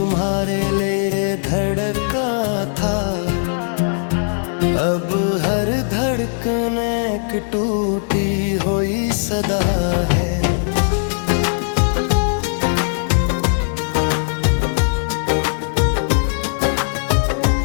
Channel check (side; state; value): right; silent; digital silence